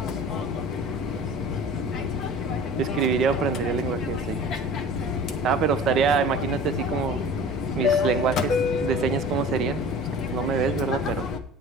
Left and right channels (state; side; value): normal; both; correlation 0.41